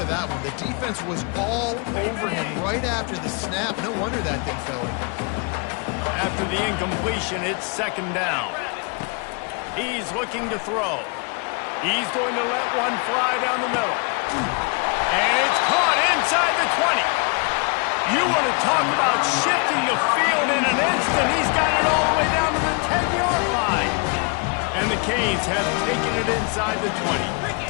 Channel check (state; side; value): quieter; right; 33.8 dB